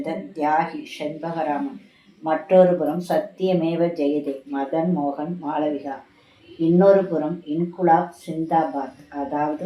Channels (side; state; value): both; identical; correlation 1.00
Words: தியாகி செண்பகராமன். மற்றொரு புறம் சத்தியமேவ ஜெயதே மதன் மோகன் மாளவிகா. இன்னொரு புறம் இன்குலாப் சிந்தாபாத், அதாவது